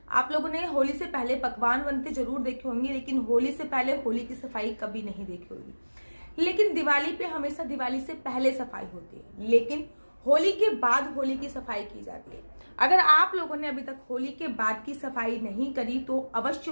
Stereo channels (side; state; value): both; inverted; correlation -1.00